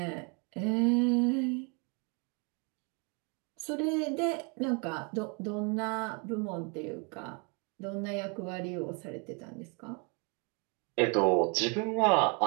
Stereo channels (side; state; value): left; quieter; 34.4 dB